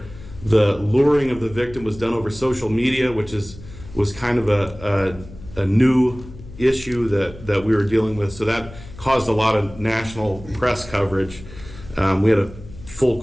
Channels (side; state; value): left; noise; hum, 16 dB below the sound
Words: the luring of the victim was done over social media, which was kind of a new issue that we were dealing with. So that caused a lot of national press coverage. We had a full